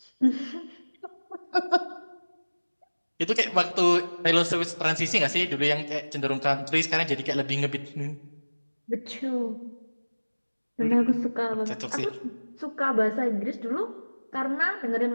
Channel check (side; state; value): both; inverted; correlation -1.00